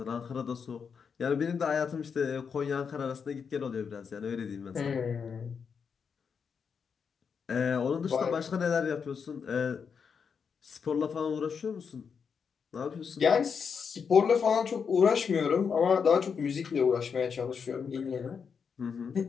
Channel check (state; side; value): quieter; right; 6.3 dB